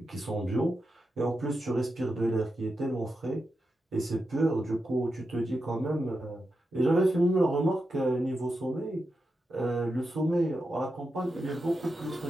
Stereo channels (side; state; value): both; normal; correlation 0.88